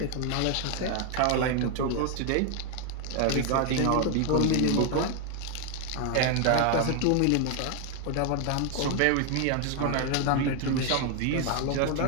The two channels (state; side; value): different; both; correlation 0.01